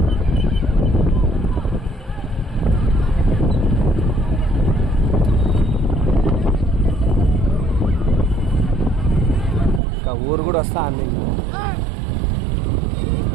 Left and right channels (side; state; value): left; drops out; at 9.8 s